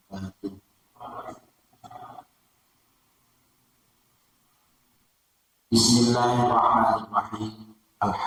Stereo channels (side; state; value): both; identical; correlation 1.00